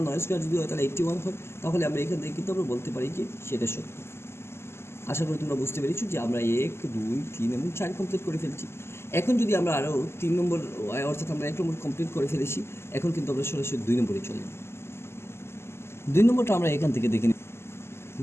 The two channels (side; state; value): right; late; 0.12 ms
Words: 9 স্কোয়ার যদি হয় তাহলে 81 হয়, তাহলে আমরা এখান থেকে কিন্তু আমরা বলতে পারি যে সেটা সত্য। আশা করি তোমরা বুঝতে পেরেছো যে আমরা 1 2 3 এবং 4 কমপ্লিট করে ফেলছি। এখন যদি আমরা আরও 3 নম্বর অর্থাৎ আমরা 1 নম্বর কমপ্লিট করে ফেলেছি, এখন কিন্তু আমরা সরাসরি 2 নম্বরে চলে যাব। 2 নম্বরটা আমরা এখান থেকে দেখে নিই।